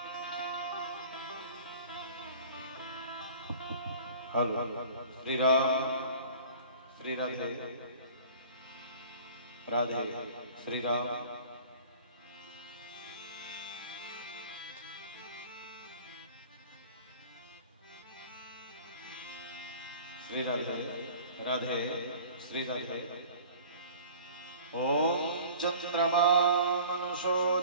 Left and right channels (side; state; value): both; inverted; correlation -0.44